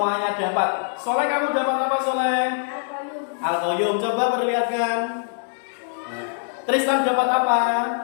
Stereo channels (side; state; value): right; silent; digital silence